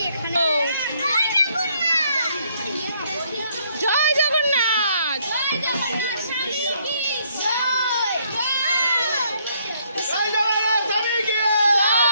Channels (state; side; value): inverted; both; correlation -0.68